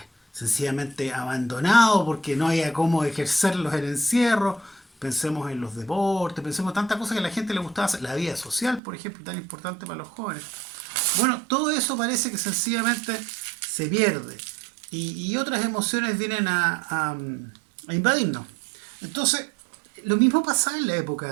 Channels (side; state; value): left; drops out; at 8.8 s